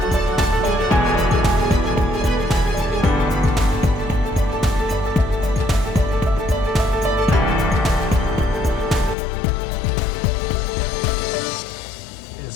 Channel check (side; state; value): right; drops out; at 9.2 s